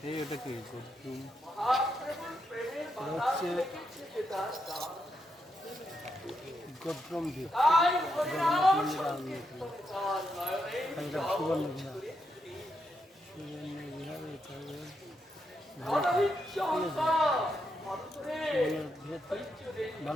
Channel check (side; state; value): both; normal; correlation 0.82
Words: এই ওটা কি হচ্ছে গদ্রম দ্বীপ, জগন্নাথ মন্দির সুবর্ণ বিহার, সুবর্ণ বিহার